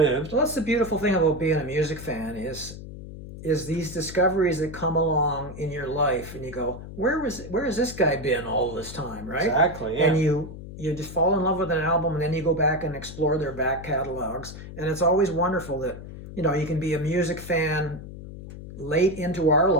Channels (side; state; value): left; noise; hum, 12 dB below the sound